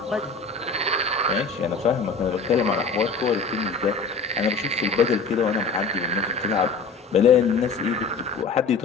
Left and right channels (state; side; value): quieter; right; 4.3 dB